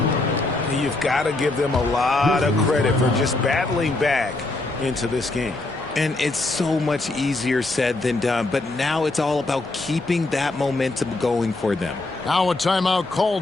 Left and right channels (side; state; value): right; quieter; 3.0 dB